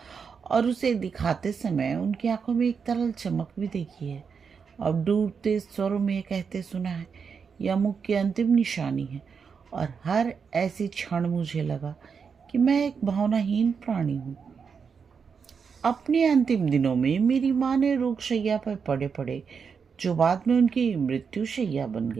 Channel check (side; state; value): left; quieter; 6.1 dB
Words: और उसे दिखाते समय उनकी आंखों में एक तरल चमक भी देखी है। अब डूबते स्वरों में ये कहते सुना है, यह मुख की अंतिम निशानी है। और हर ऐसी क्षण मुझे लगा कि मैं एक भावनाहीन प्राणी हूँ। अपने अंतिम दिनों में मेरी माँ ने रोगशैया पर पड़े पड़े, जो बाद में उनकी मृत्यु शैया बन